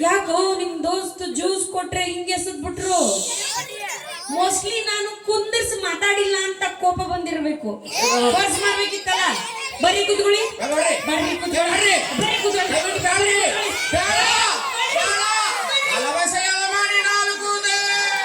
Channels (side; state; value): both; identical; correlation 1.00